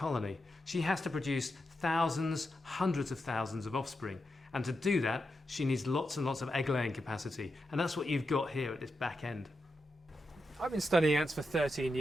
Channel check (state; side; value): normal; both; correlation 0.87